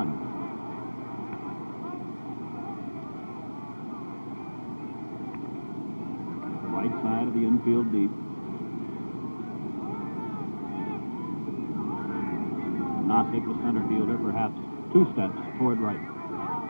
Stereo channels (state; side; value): inverted; both; correlation -1.00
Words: Right side of the infield deep. Nossick, the center fielder, perhaps 2 steps toward right.